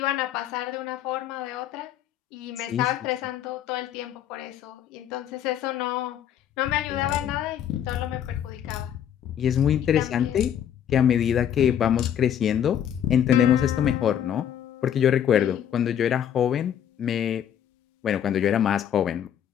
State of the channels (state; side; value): quieter; right; 9.7 dB